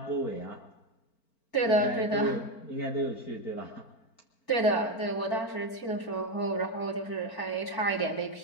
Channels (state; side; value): late; right; 4.4 ms